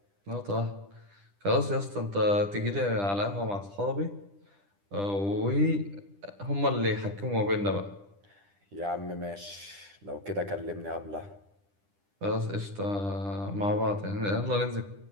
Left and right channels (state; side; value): late; left; 10 ms